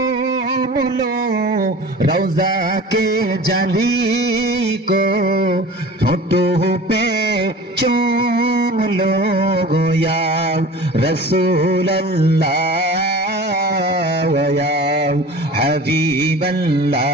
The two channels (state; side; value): normal; both; correlation 0.39